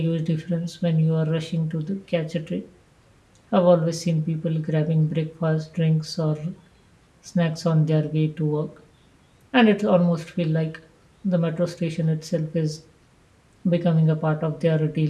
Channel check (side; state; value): both; identical; correlation 1.00